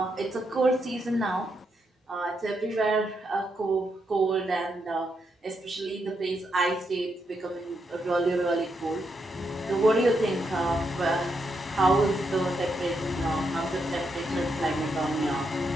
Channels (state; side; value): normal; both; correlation 0.81